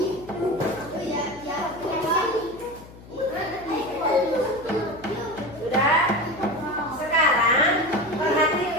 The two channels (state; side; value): noise; left; hum, 19 dB below the sound